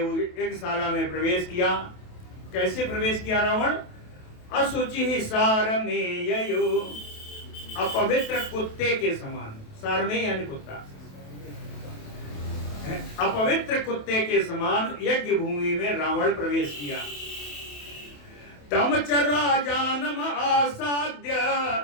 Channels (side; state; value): right; late; 28 ms